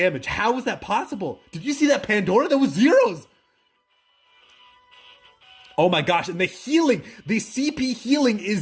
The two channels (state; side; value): identical; both; correlation 1.00